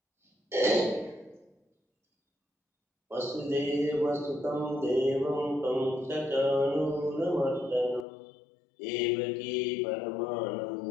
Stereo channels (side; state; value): right; drops out; at 8.1 s